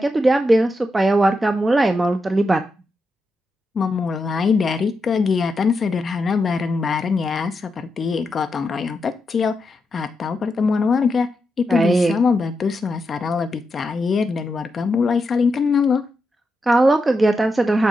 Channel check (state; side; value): normal; both; correlation 0.86